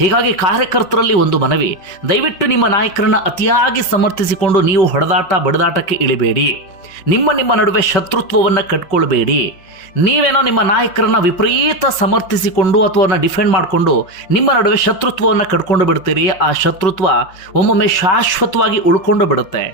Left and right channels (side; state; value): right; late; 5.5 ms